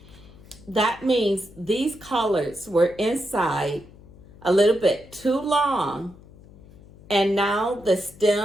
That means these collards were inside a little bit too long, and now the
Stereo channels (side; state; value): left; noise; hum, 22 dB below the sound